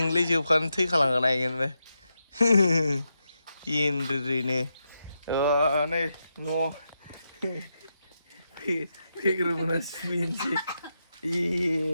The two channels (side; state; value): both; inverted; correlation -0.86